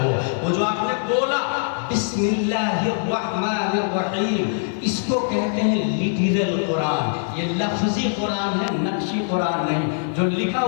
وہ جو آپ نے بولا بسم اللہ الرحمن الرحیم, اس کو کہتے ہیں لٹرل قرآن. یہ لفظی قرآن ہے, نقشی قرآن نہیں. جو لکھا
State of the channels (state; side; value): silent; right; digital silence